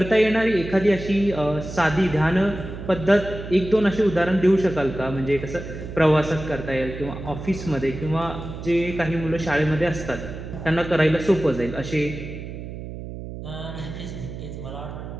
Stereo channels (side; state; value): right; noise; hum, 10 dB below the sound